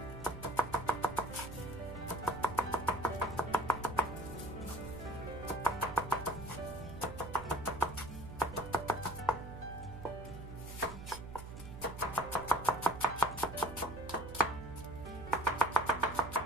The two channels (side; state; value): right; noise; hum, 12 dB below the sound